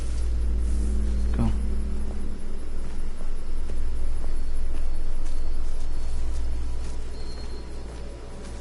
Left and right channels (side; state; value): both; identical; correlation 1.00